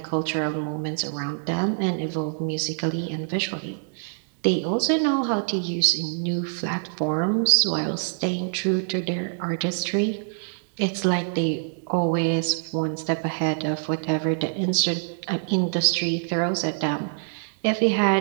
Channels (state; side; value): silent; left; digital silence